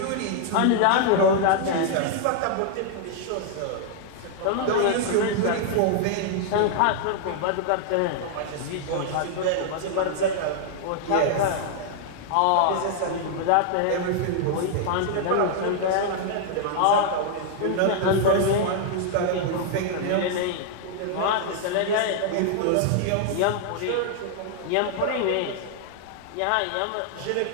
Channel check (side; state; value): both; different; correlation -0.01